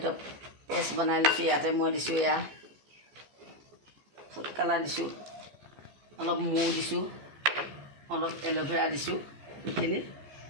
পেষ্ট বনাই লৈছোঁ। ইয়াতে মই দিছোঁ এয়া ফুড কালাৰ দিছোঁ, অলপ মৌ দিছোঁ, অলপ এল'ভেৰা দিছোঁ। এইখিনি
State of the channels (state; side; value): late; left; 14 ms